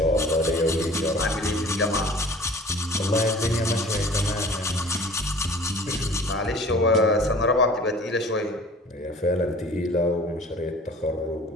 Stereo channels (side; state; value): both; normal; correlation 0.46